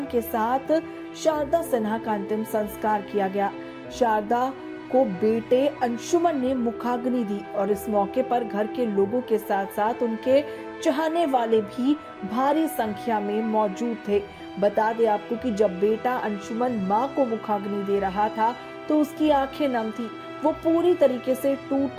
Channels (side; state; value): both; identical; correlation 1.00